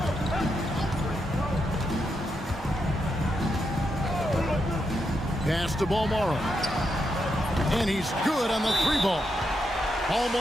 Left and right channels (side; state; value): both; normal; correlation 0.83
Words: Pass to Balmaro. And he's good on the three ball.